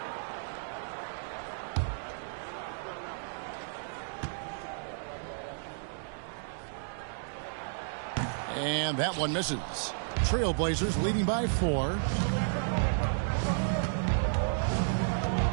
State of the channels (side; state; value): left; silent; digital silence